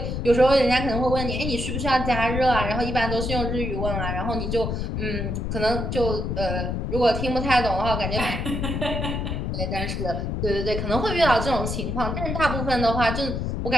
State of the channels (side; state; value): left; noise; rumble, 2 dB below the sound